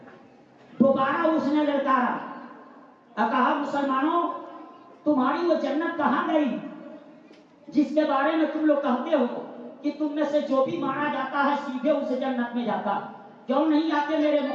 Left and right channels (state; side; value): identical; both; correlation 1.00